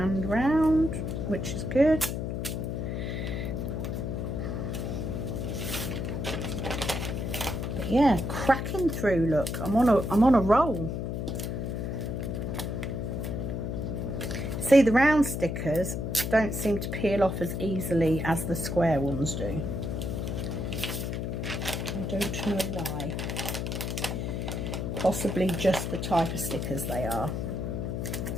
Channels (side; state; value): left; noise; hum, 3 dB below the sound